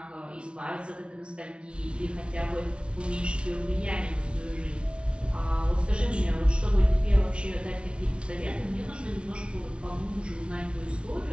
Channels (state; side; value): late; left; 0.058 ms